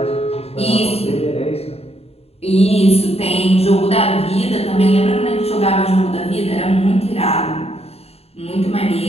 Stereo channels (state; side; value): late; right; 0.29 ms